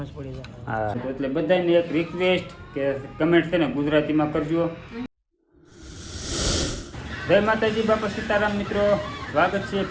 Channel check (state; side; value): identical; both; correlation 1.00